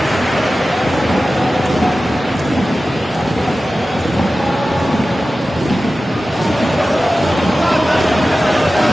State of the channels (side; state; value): both; normal; correlation 0.95